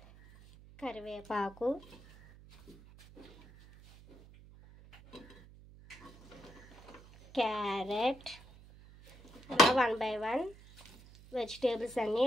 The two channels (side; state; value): right; noise; hum, 21 dB below the sound